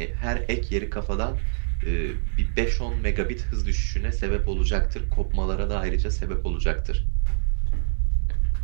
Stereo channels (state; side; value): silent; left; digital silence